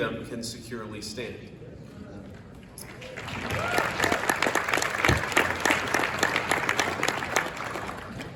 can securely stand.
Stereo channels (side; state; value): both; identical; correlation 1.00